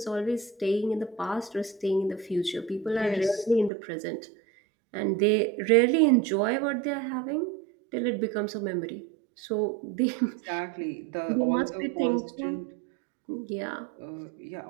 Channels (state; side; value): drops out; left; at 3.7 s